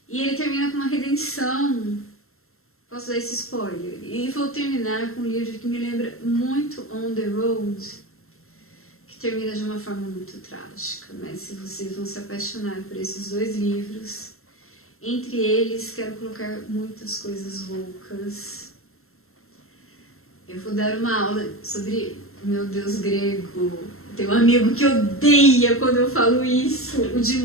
E ele termina com uma redenção Posso dar esse spoiler? E vou terminar com um livro que me lembra muito On the Road, que termina de uma forma muito trágica, mas se vocês vão se apaixonar por esses dois livros, entre eles quero colocar muitas coisas loucas. Eu vou dar uma aula sobre o meu deus grego. Tem um amigo que odeia quando eu falo isso, o Jim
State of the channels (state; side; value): late; right; 0.62 ms